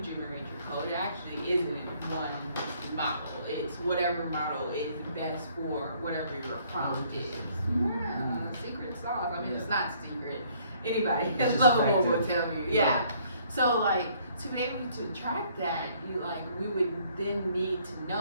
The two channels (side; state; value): both; inverted; correlation -0.63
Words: generate your code, it actually isn't one model. It's whatever model is best for whatever your prompt is. Yeah, secret sauce. I mean, it's not secret. Anybody at Lovable will tell you. Yeah. So like to be able to track that, we would then need to